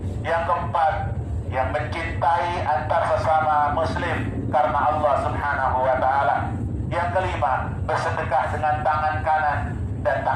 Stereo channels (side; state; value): both; identical; correlation 1.00